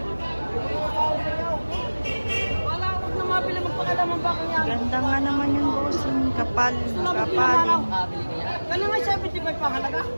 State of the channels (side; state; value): both; inverted; correlation -1.00